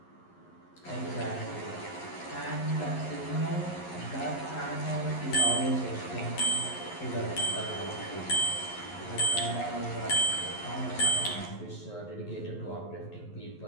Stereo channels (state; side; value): late; right; 11 ms